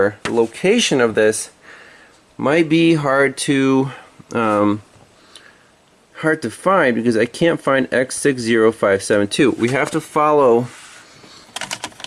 the location of this might be hard to find because I can't find X60572. We have to follow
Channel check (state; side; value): identical; both; correlation 1.00